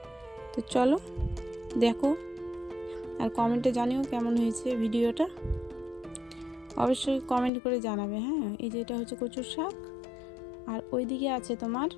তো চলো দেখো, আর কমেন্টে জানিও কেমন হয়েছে ভিডিওটা, অবশ্যই কমেন্ট করে জানাবে। হ্যাঁ, এই যে এটা হচ্ছে কচুর শাক, আর ওইদিকে আছে তোমার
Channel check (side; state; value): right; drops out; at 7.5 s